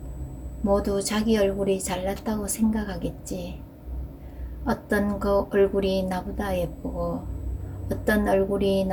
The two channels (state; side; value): identical; both; correlation 1.00